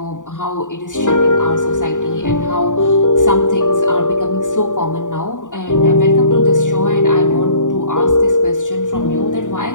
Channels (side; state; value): right; late; 0.87 ms